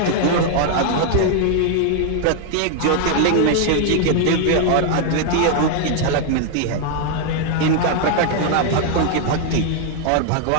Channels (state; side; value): different; both; correlation 0.00